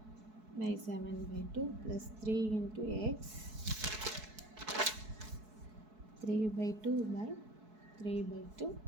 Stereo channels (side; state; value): left; late; 4.7 ms